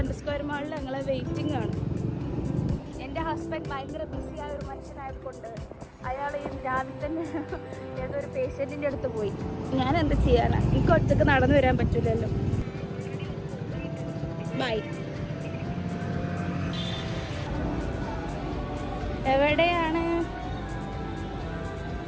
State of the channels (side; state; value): both; identical; correlation 1.00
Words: സ്ക്വയർ മാളിൽ ഞങ്ങളെ വെയിറ്റിംഗ് ആണ്. എൻ്റെ ഹസ്ബൻഡ് ഭയങ്കര ബിസിയായ ഒരു മനുഷ്യനായതുകൊണ്ട് അയാൾ രാവിലെ തന്നെ ഏതൊരു പേഷ്യൻറ്റിൻ്റെ അടുത്ത് പോയി. ഞാൻ എന്ത് ചെയ്യാനാണ്? എനിക്ക് ഒറ്റക്ക് നടന്നു വരാൻ പറ്റില്ലല്ലോ. ബൈ. എവിടെയാണ്?